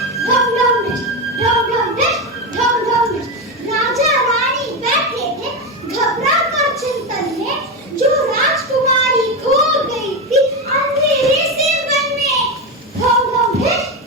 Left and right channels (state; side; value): normal; both; correlation 0.14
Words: ढम ढम ढेश, ढम ढम ढेश, ढम ढम ढेश। राजा रानी बैठे थे घबरा कर चिंतन में, जो राजकुमारी खो गई थी अंधेरे से वन में। ढम ढम ढेश,